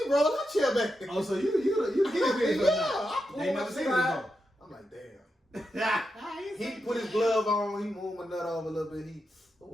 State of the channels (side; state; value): both; normal; correlation 0.87